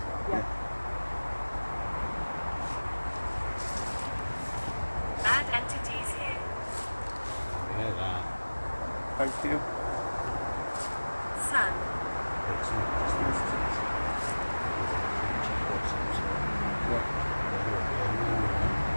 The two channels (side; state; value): both; inverted; correlation -1.00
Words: well. Yeah. Bad entities here. Yeah, that. Thank you. Sun. It's not just instances. There's a creature of some sort. Yeah. Whether it be a man or